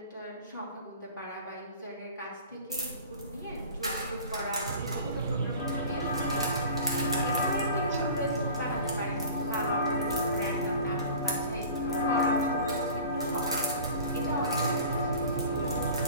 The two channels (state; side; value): inverted; both; correlation -0.41